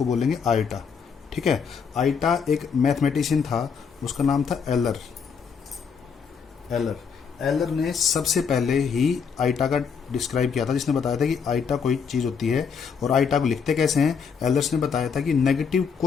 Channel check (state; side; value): quieter; right; 6.3 dB